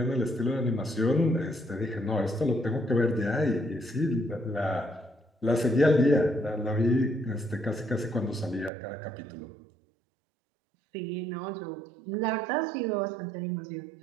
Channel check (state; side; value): drops out; left; at 8.7 s